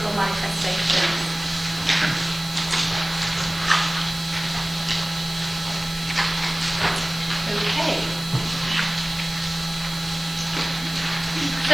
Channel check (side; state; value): right; noise; hiss, 15 dB below the sound